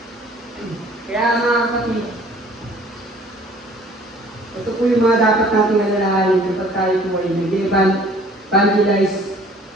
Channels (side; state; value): both; normal; correlation 0.54